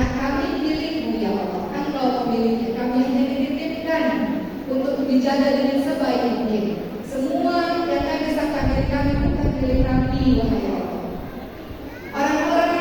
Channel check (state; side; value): identical; both; correlation 1.00